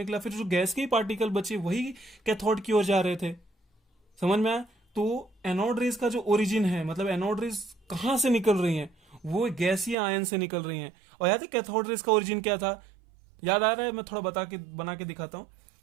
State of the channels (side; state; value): left; drops out; at 10.0 s